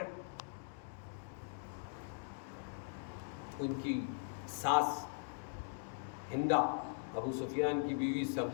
ان کی ساس ہندہ ابو سفیان کی بیوی،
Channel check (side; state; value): right; silent; digital silence